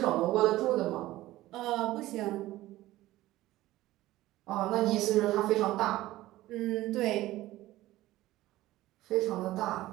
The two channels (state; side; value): quieter; left; 16.4 dB